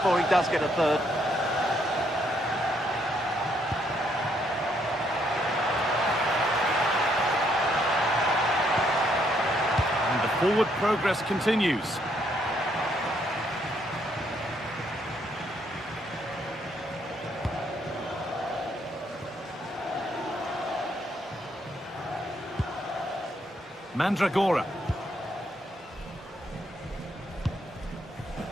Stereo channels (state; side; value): normal; both; correlation 0.72